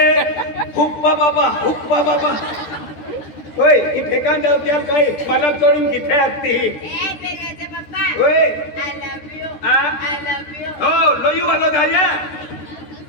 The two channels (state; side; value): late; right; 14 ms